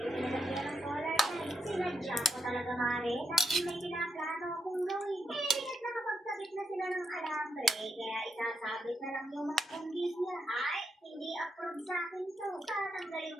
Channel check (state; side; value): normal; both; correlation 0.82